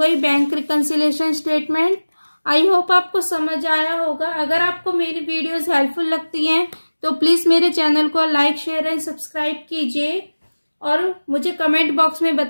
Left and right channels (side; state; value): both; inverted; correlation -1.00